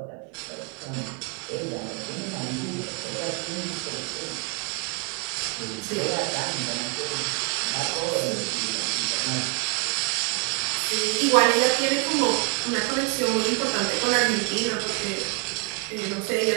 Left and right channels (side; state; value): left; quieter; 29.9 dB